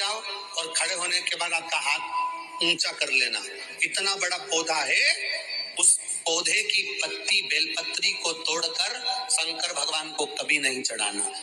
और खड़े होने के बाद आपका हाथ ऊंचा कर लेना, इतना बड़ा पौधा है, उस पौधे की पत्ती बेलपत्री को तोड़कर शंकर भगवान को कभी नहीं चढ़ाना।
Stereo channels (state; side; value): identical; both; correlation 1.00